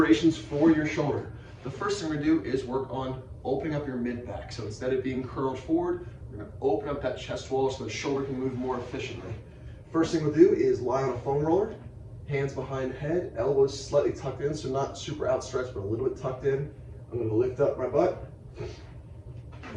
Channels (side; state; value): both; identical; correlation 1.00